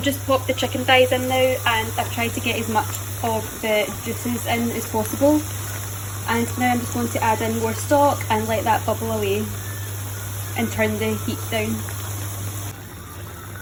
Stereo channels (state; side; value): identical; both; correlation 1.00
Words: just popped the chicken thighs in now, and I've tried to get as much of the juices in as possible. And now I'm just going to add in more stock and let that bubble away and turn the heat down.